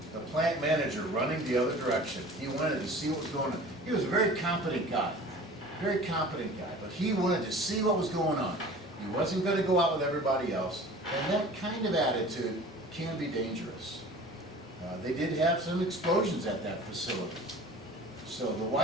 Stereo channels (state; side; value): normal; both; correlation 0.42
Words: the plant manager running the other direction. He wanted to see what was going on. He was a very competent guy. Very competent guy, but he wanted to see what was going on. He wasn't going to go out with everybody else, and that kind of attitude can be dangerous. They did have some explosions at that facility. So the